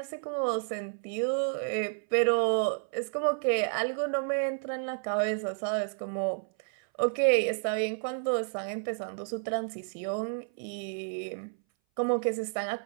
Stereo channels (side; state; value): left; silent; 57 dB below the other